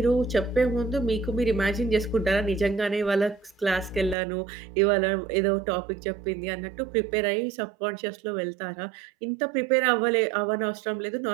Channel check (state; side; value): drops out; left; at 4.2 s